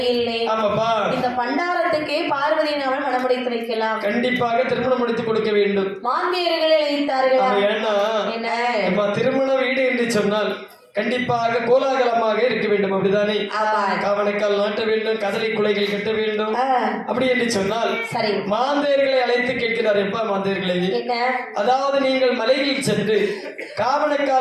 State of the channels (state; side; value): identical; both; correlation 1.00